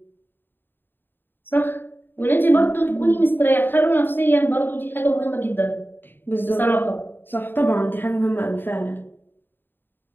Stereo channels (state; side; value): late; right; 0.096 ms